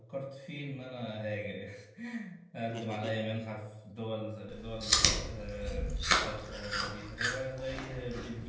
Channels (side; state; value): both; identical; correlation 1.00